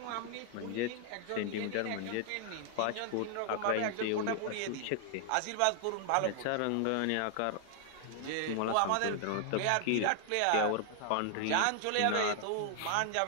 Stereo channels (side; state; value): both; different; correlation 0.00